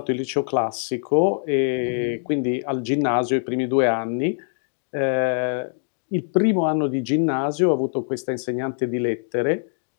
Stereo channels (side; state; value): right; silent; digital silence